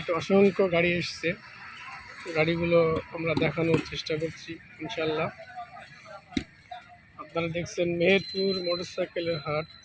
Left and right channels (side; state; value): both; identical; correlation 1.00